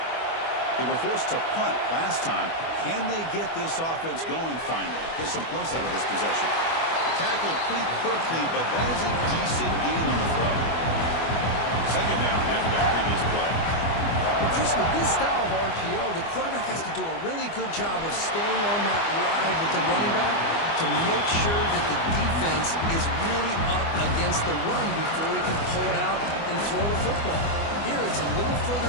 They were forced to punt last time. Can they get this offense going finally? Get some points out of this possession. Tackled pretty quickly, but that is a decent gain on the throw. 2nd down after that previous play. Well, Chris, with this style of RPO, the quarterback has to do a really good job of staying on that ride with the running back to make sure that the defense is really up against the run before he can pull it out and throw the football. Here, it's a little further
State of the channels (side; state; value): right; late; 24 ms